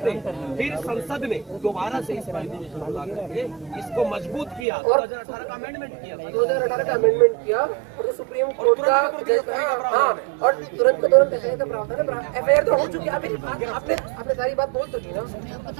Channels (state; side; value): drops out; left; at 4.7 s